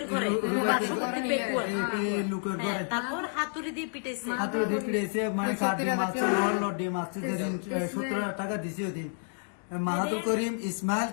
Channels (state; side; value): silent; right; 58 dB below the other